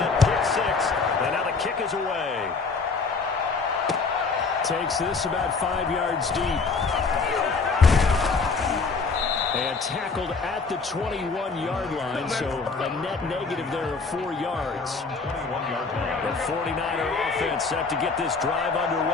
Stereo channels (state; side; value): quieter; right; 4.5 dB